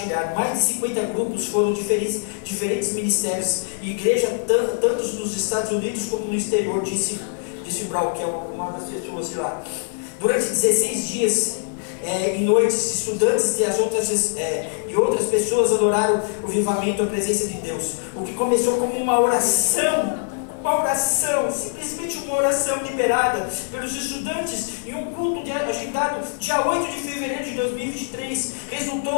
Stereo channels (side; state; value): right; silent; digital silence